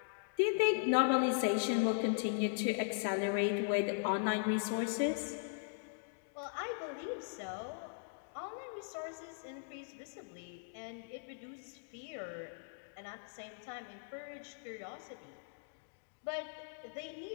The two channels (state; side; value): silent; right; digital silence